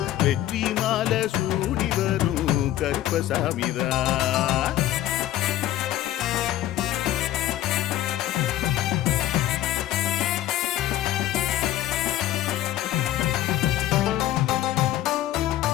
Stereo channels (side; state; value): right; quieter; 13.6 dB